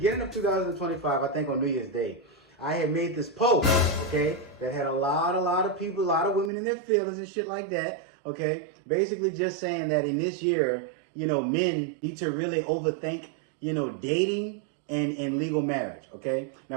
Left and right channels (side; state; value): left; drops out; at 6.5 s